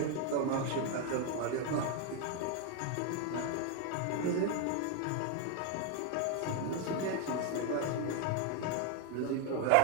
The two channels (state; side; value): different; both; correlation 0.01